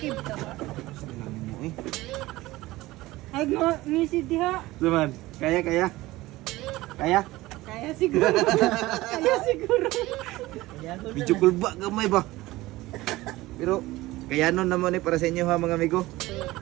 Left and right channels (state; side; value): quieter; left; 18.5 dB